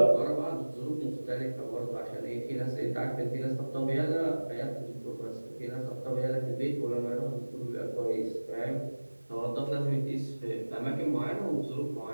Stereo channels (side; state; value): both; inverted; correlation -1.00